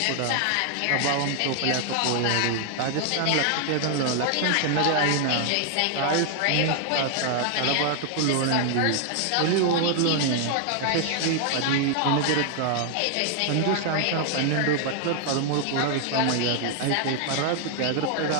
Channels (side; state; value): both; different; correlation 0.00